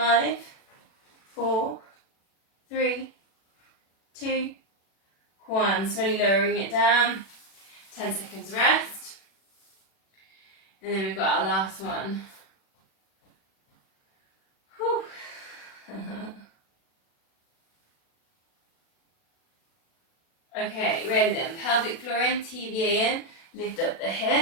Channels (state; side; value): late; right; 36 ms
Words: 4, 3, 2, 1. Slowly lowering it down. 10 seconds rest. And then we've got our last one. Whew. Okay, ready then. Pelvic floor in, TVA in. Lift up the